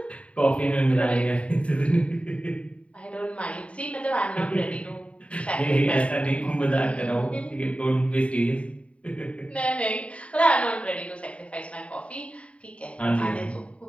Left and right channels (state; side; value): late; right; 0.063 ms